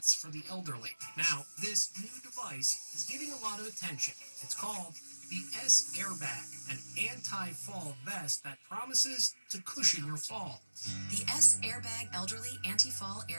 for the elderly. Now, this new device is getting a lot of attention. It's called the S-Airbag, an anti-fall vest that promises to cushion your fall. The S-Airbag Elderly Anti-Fall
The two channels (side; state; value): both; inverted; correlation -1.00